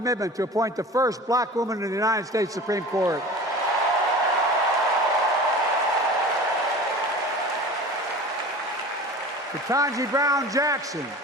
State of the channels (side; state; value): both; normal; correlation 0.37